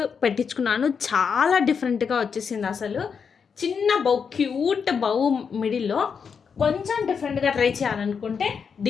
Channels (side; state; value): right; quieter; 6.3 dB